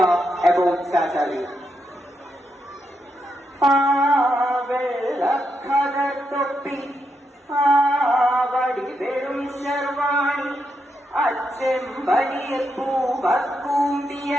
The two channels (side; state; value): both; normal; correlation 0.82